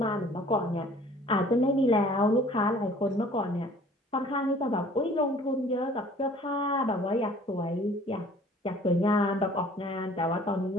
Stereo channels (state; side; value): normal; both; correlation 0.51